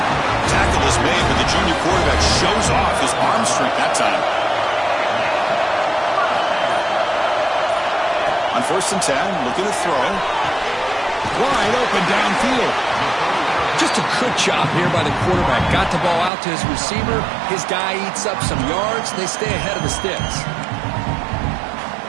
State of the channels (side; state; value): left; drops out; at 16.3 s